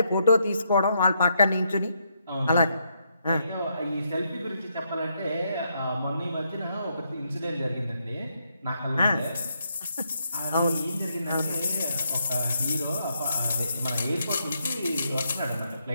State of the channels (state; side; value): inverted; both; correlation -0.78